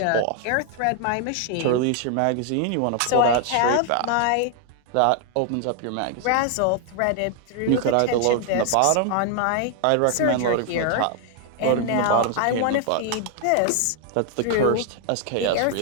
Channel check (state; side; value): different; both; correlation 0.00